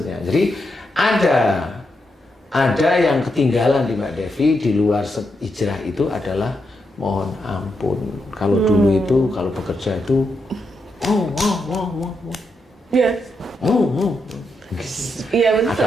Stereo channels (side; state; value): both; normal; correlation 0.83